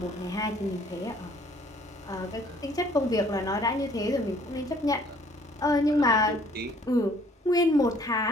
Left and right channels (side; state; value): both; normal; correlation 0.58